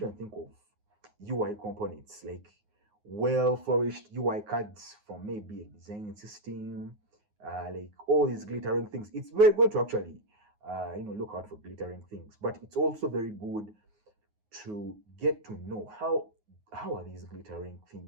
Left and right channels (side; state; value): left; late; 9.5 ms